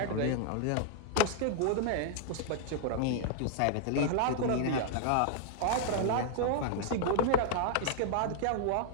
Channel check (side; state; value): both; different; correlation 0.00